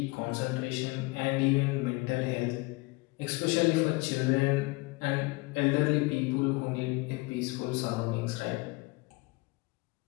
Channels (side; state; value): right; quieter; 24.8 dB